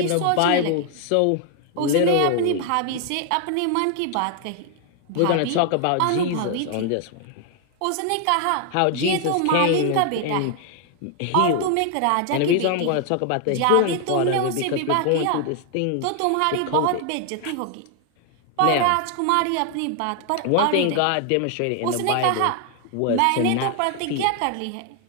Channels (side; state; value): both; different; correlation 0.00